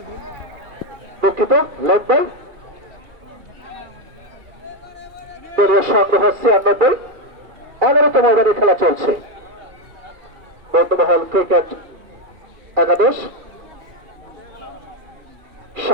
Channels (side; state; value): left; late; 2.4 ms